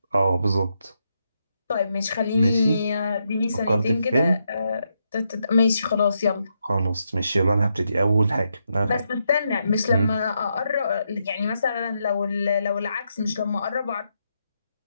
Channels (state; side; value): inverted; both; correlation -0.82